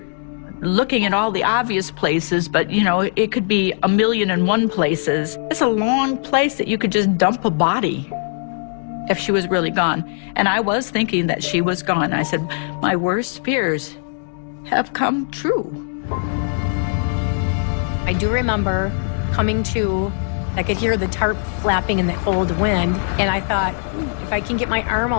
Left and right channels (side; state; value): right; silent; digital silence